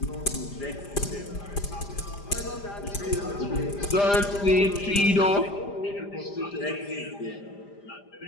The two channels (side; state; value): right; late; 5.0 ms